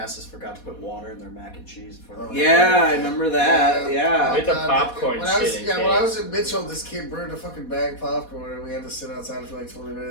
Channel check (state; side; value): late; right; 4.2 ms